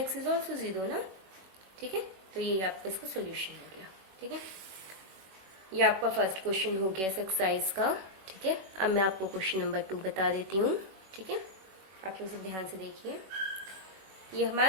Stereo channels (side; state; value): left; late; 21 ms